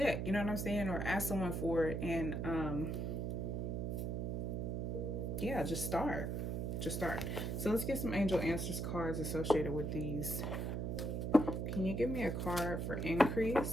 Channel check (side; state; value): right; noise; hum, 1 dB below the sound